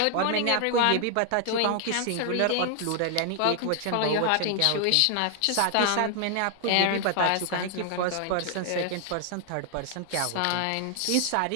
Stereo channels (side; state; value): both; different; correlation 0.00